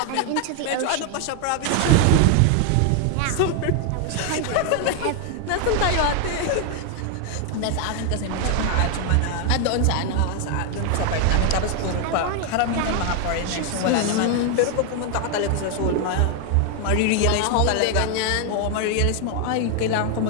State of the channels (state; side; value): different; both; correlation 0.00